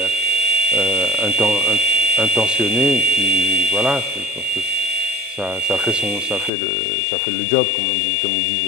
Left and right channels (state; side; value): drops out; right; at 6.5 s